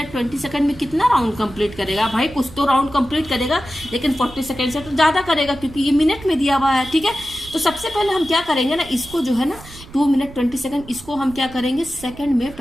20 सेकंड में कितना राउंड कंप्लीट करेगा भाई, कुछ तो राउंड कंप्लीट करेगा, लेकिन 40 सेकंड से तो ज्यादा करेगा क्योंकि ये मिनट में दिया हुआ है, ठीक है। तो सबसे पहले हम क्या करेंगे ना, इसको जो है ना 2 मिनट 20 सेकंड, इसको हम क्या करेंगे, सेकंड में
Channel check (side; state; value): right; noise; rumble, 18 dB below the sound